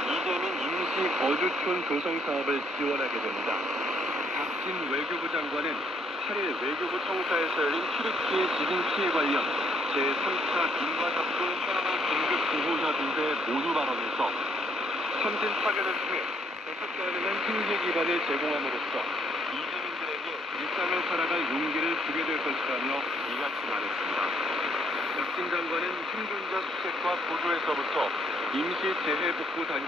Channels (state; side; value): normal; both; correlation 0.69